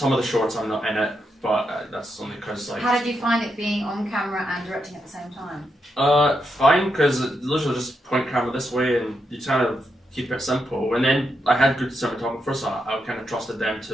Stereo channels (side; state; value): both; normal; correlation 0.83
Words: of the shorts I'm not in it, but that's only because like. How did you find it being on camera and directing at the same time? Fine, because literally just point camera this way, and you kind of keep it simple. And then I had good cinematographers, so I kind of trusted them